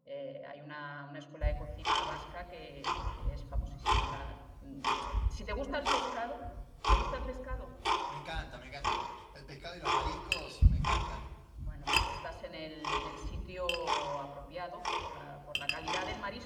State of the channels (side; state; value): both; identical; correlation 1.00